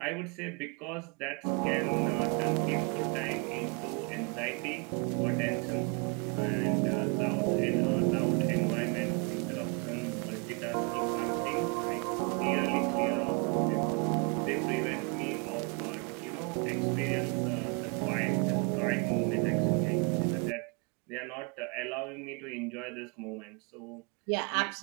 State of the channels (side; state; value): left; quieter; 34.5 dB